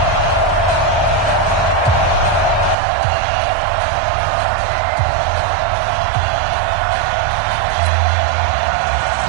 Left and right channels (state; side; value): drops out; left; at 2.8 s